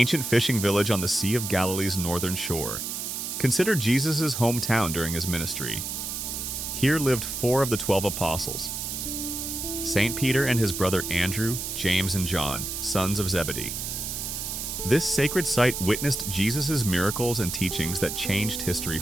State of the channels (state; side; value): noise; right; hiss, 4 dB below the sound